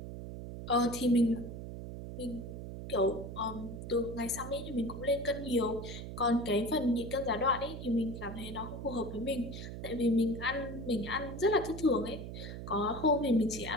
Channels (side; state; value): right; noise; hum, 8 dB below the sound